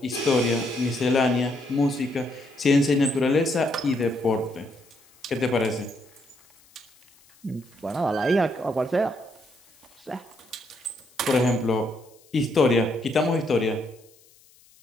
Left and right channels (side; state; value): left; noise; hiss, 29 dB below the sound